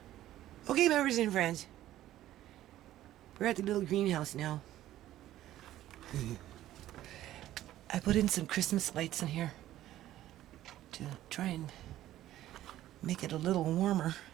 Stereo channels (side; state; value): left; quieter; 13.7 dB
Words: Okay, members and friends, we're at the little greenhouse now. I put in some Christmas lights in here to try and make it a little warmer,